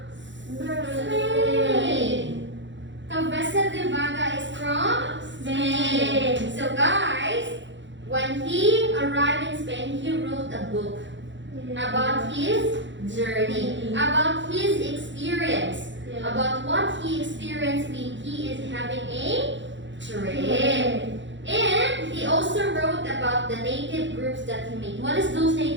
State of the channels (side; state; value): left; late; 0.54 ms